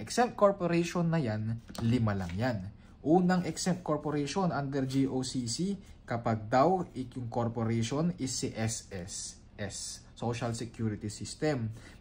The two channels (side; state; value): both; identical; correlation 1.00